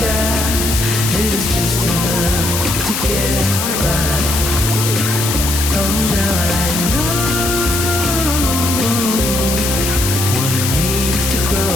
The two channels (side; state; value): left; noise; hiss, 2 dB below the sound